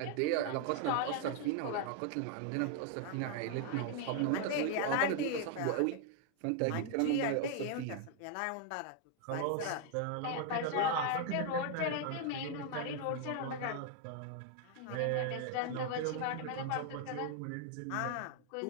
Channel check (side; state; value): both; different; correlation 0.00